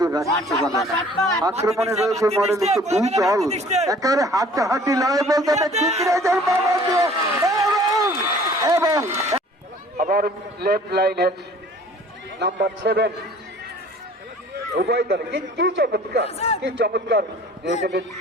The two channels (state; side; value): normal; both; correlation 0.51